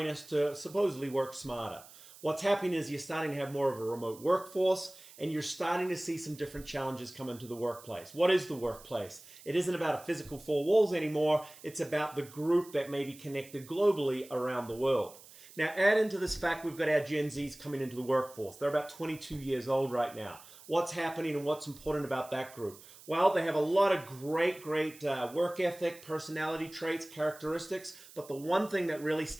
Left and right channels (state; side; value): noise; right; hiss, 20 dB below the sound